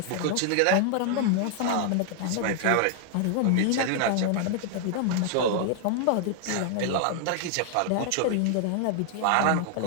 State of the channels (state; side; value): different; both; correlation 0.00